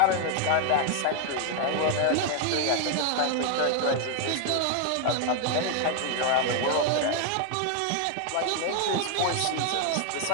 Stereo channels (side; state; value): both; different; correlation 0.00